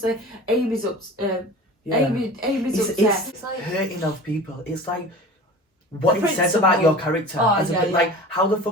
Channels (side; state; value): both; normal; correlation 0.37